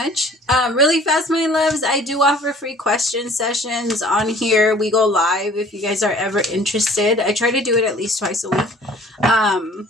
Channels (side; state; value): both; normal; correlation 0.52